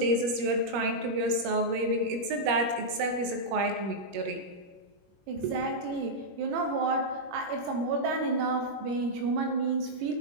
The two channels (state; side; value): late; left; 21 ms